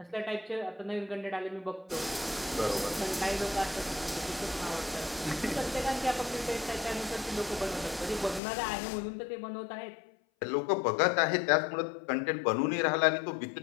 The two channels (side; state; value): right; drops out; at 8.4 s